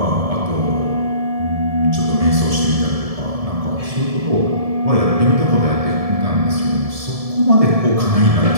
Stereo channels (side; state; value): left; late; 1.7 ms